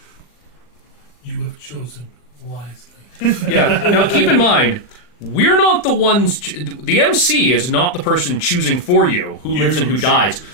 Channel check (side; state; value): right; late; 39 ms